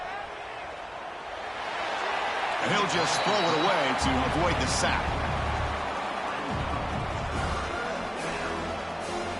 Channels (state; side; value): identical; both; correlation 1.00